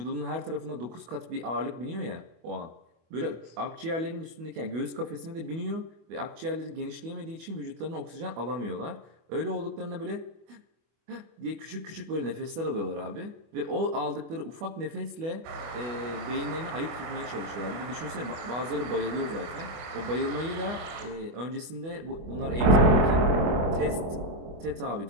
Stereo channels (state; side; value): late; left; 24 ms